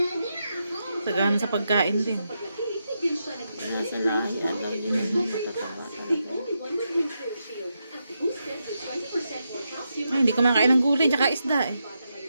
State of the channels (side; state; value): both; inverted; correlation -0.84